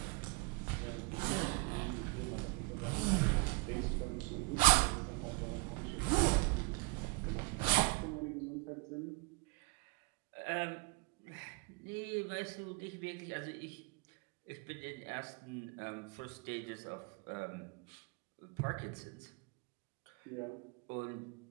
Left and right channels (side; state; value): left; quieter; 26.8 dB